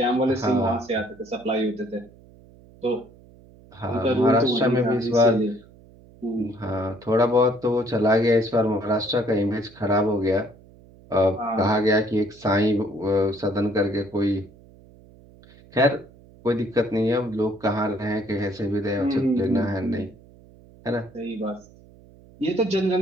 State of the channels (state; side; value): noise; right; hum, 24 dB below the sound